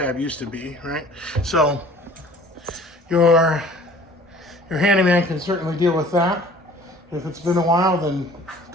used to be, right? So your handyman can certainly deal with that. If it's been a while, then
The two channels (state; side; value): normal; both; correlation 0.49